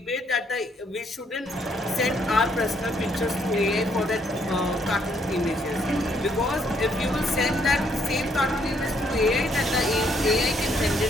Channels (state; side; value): normal; both; correlation 0.70